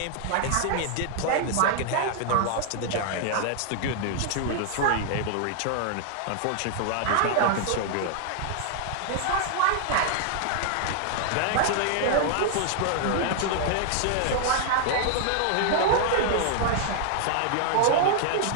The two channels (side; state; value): both; different; correlation -0.01